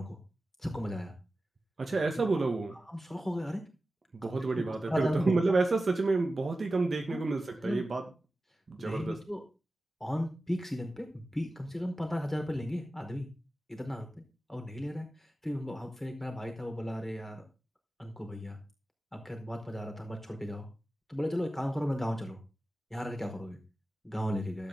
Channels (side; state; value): both; normal; correlation 0.94